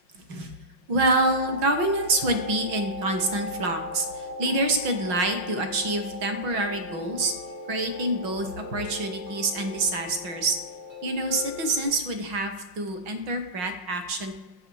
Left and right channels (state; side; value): late; left; 5.6 ms